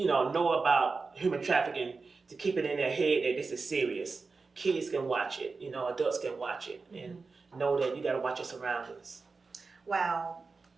about human trafficking, to keep it in their head that this is serious. Kids can watch it, adults can watch it, and know that you gotta watch your surroundings. Wow.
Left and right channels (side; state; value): left; quieter; 4.3 dB